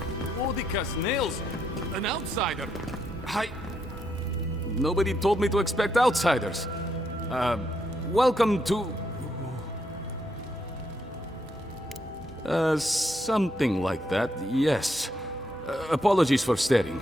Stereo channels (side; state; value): both; normal; correlation 0.77